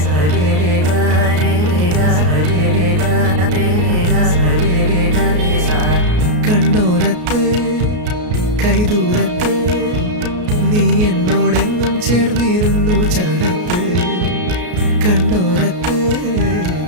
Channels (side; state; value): left; late; 33 ms